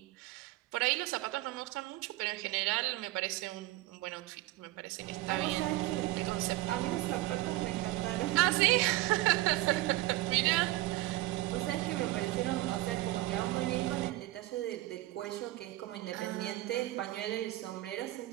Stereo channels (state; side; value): quieter; left; 17.7 dB